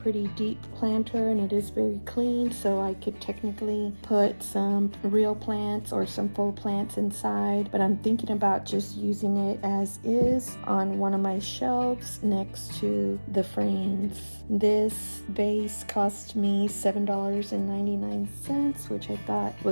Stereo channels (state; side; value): inverted; both; correlation -1.00